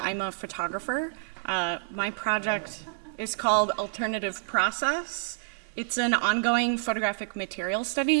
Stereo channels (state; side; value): silent; left; 59 dB below the other